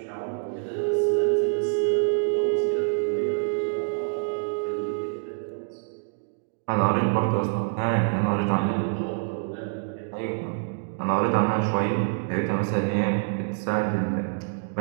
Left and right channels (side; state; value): left; silent; digital silence